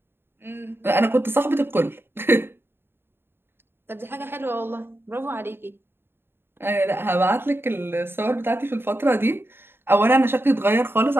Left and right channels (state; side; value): late; left; 0.11 ms